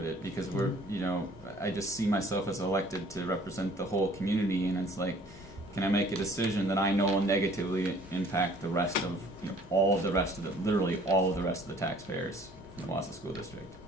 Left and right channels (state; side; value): normal; both; correlation 0.55